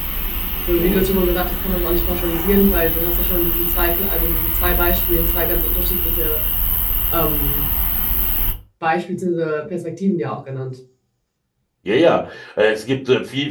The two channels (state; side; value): identical; both; correlation 1.00